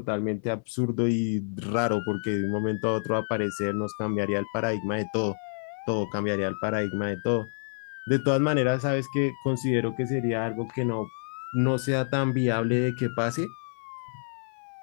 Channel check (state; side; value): silent; right; 59 dB below the other